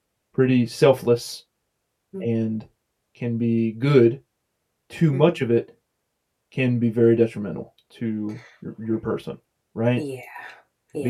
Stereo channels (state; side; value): identical; both; correlation 1.00